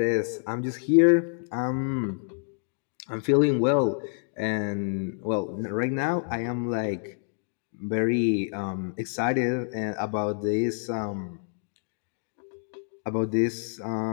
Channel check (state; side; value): silent; right; 60 dB below the other